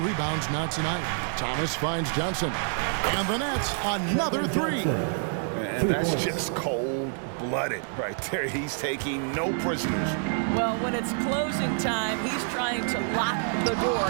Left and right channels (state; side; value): silent; left; 60 dB below the other